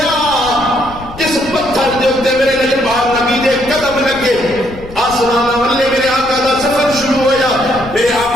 جس پتھر دے اوپر میرے لجپال نبی دے قدم لگے آسمان والے میرے آقا دا سفر شروع ہویا. میرے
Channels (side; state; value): left; noise; rumble, 16 dB below the sound